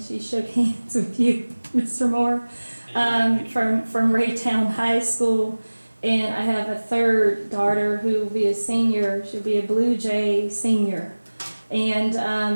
she shook hands with you, Mr. Moore, from Raytown High School. And I have a 3rd daughter who will be a senior. She'll be a Blue Jay senior. And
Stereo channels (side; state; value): both; inverted; correlation -1.00